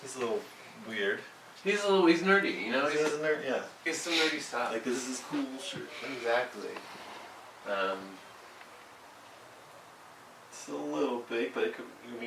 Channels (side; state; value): both; identical; correlation 1.00